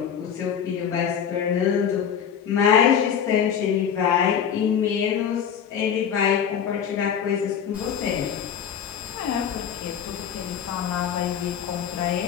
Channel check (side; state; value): right; quieter; 8.2 dB